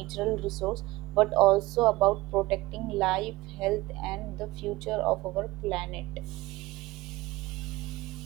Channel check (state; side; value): quieter; left; 19.7 dB